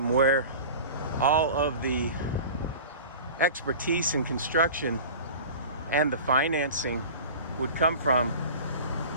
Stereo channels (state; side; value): inverted; both; correlation -0.37